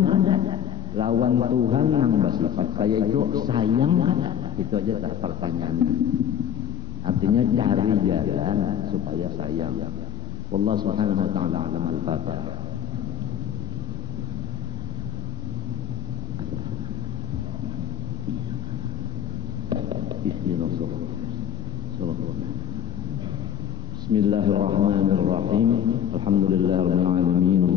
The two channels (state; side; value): quieter; right; 9.1 dB